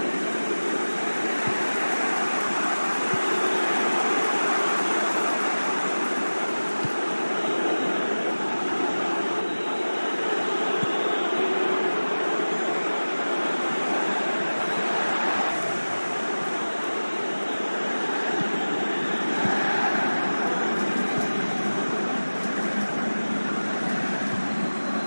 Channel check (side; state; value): both; inverted; correlation -1.00